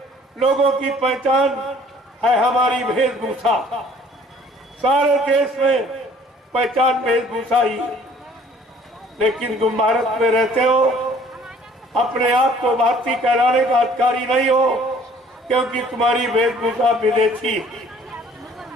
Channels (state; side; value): normal; both; correlation 0.55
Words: लोगों की पहचान है हमारी वेशभूषा। सारे देश में पहचान वेशभूषा ही, लेकिन तुम भारत में रहते हो, अपने आप को भारतीय कहलाने का अधिकारी नहीं हो, क्योंकि तुम्हारी वेशभूषा विदेशी।